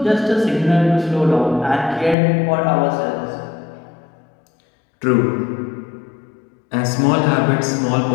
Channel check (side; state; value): right; drops out; at 2.1 s